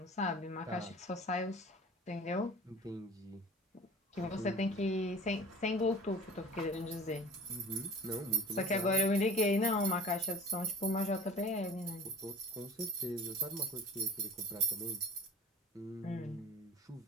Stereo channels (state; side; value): normal; both; correlation 0.41